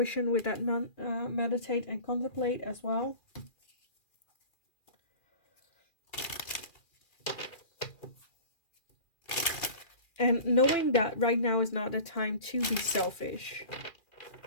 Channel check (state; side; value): late; right; 2.4 ms